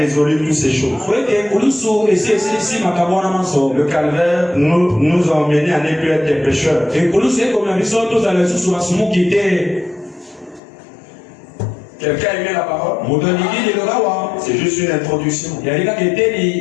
toutes ces choses. Le calvaire nous a emmenés à ne plus être des pécheurs. Quelqu'un aimait la parole? C'est juste une introduction. Nous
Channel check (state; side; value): drops out; right; at 10.6 s